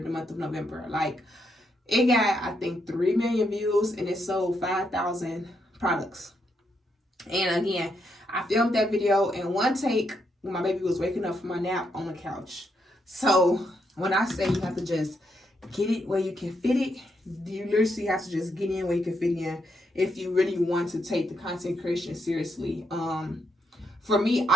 the month of November. Like it got, I think, 3 million views, and it sold 5,000 products. And again, I filmed that video in one take when my baby was waking up from my nap on the couch. So when I say you have to just get it where you can fit it, you literally have to just get in where you can fit in if you really want to take the content creation seriously. For me,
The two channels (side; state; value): both; normal; correlation 0.79